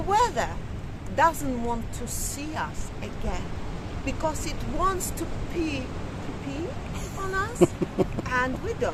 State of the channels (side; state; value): both; identical; correlation 1.00